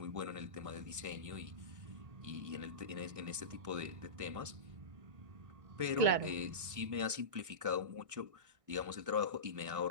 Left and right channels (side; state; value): left; late; 1.6 ms